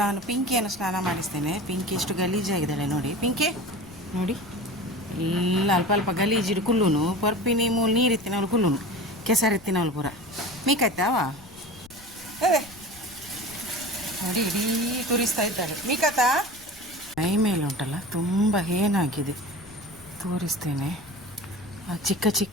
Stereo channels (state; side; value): noise; left; rumble, 24 dB below the sound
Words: ನಾನು ಪಿಂಕಿಯನ್ನು ಸ್ನಾನ ಮಾಡಿಸ್ತೇನೆ. ಪಿಂಕಿ ಎಷ್ಟು ಗಲೀಜಾಗಿದ್ದಾಳೆ ನೋಡಿ. ಪಿಂಕಿ ನೋಡಿ, ಎಲ್ಲ ಅಲ್ಪ ಅಲ್ಪ ಗಲೀಜಿಡು ಕುಲ್ಲುನು ಪರ್ಪಿನಿ ಮೂಲು ನೀರಿತ್ತಿನವಳು ಕುಲ್ಲುನು ಕೆಸರಿತ್ತಿನವಳು ಪೂರ ಮೀಕಾಯ್ತಾವ ನೋಡಿ. ಇಡೀ ತುರಿಸ್ತಾ ಇದ್ದಾಳೆ ಮೀಕಾತ. ಮೈ ಮೇಲೆ ಉಂಟಲ್ಲ ತುಂಬ ಏನಾಗಿದೆ ತೋರಿಸ್ತೇನೆ. ಆ ಚಿಕ್ಕ